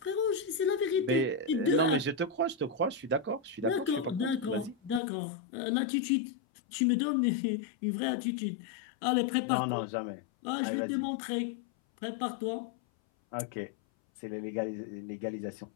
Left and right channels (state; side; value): drops out; right; at 5.0 s